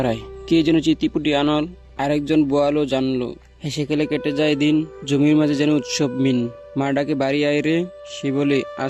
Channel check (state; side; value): identical; both; correlation 1.00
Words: কে যেন চিতিপুটি আনল, আরেকজন বোয়ালো জানলো। হেসে খেলে কেটে যায় দিন, জমির মাঝে যেন উৎসব মিন। মা ডাকে বাড়ি আয় রে, সে বলে